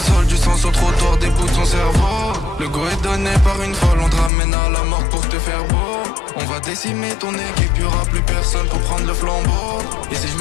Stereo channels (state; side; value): drops out; right; at 4.3 s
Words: du sang sur le trottoir, des bouts de son cerveau. Le go est donné par une folle, on te ramène à la mort pour te faire beau. On va décimer ton équipe, y'aura plus personne pour prendre le flambeau. Et si je